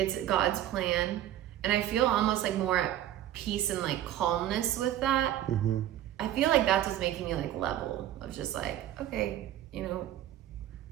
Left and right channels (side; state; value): left; quieter; 12.5 dB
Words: God's plan. And I feel almost like more at peace and like calmness with that. I feel like that's what's making me like level of just like, okay, you know,